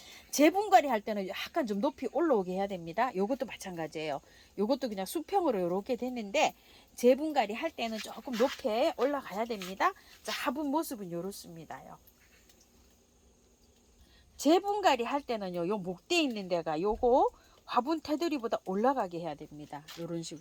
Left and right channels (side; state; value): both; identical; correlation 1.00